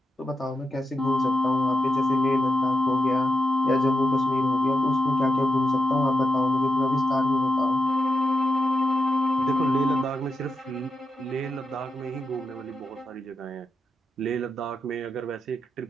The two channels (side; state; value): both; normal; correlation 0.85